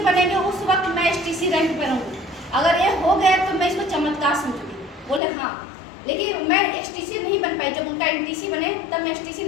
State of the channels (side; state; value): right; drops out; at 5.2 s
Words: बनेंगे उस वक्त मैं एसटीसी रैंक पर रहूँगी, अगर ये हो गया तो मैं इसको चमत्कार समझूंगी। बोले हाँ, लेकिन मैं एसटीसी नहीं बन पाई। जब उनका एनटीसी बने तब मैं एसटीसी